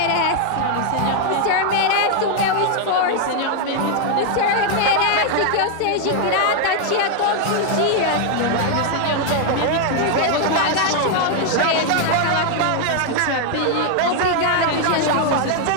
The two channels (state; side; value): different; both; correlation 0.00